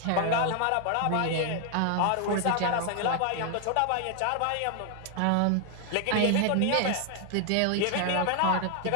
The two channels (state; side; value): different; both; correlation 0.00